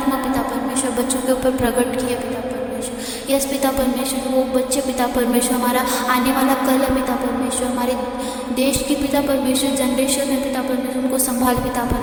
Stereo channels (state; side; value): identical; both; correlation 1.00